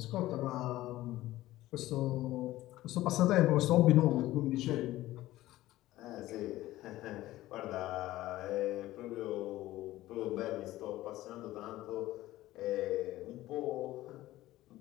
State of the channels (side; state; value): right; quieter; 16.1 dB